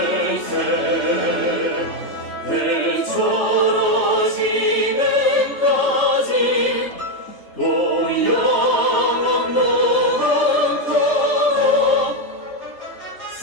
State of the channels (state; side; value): late; right; 3.4 ms